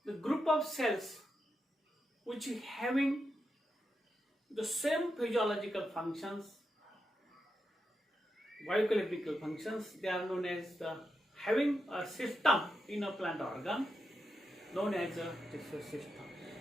The group of cells which having the same physiological functions, biochemical functions, they are known as the having a system in a plant organ known as a tissue system.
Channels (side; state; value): both; normal; correlation 0.86